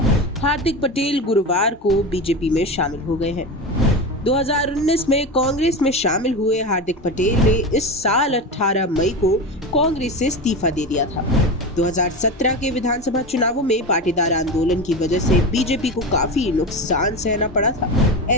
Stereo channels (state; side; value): normal; both; correlation 0.23